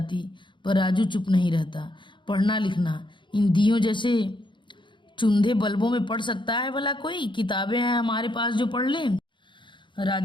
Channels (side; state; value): right; late; 0.23 ms